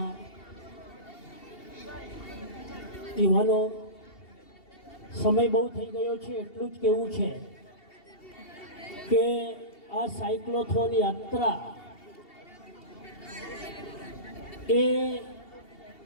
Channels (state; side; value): late; right; 2.7 ms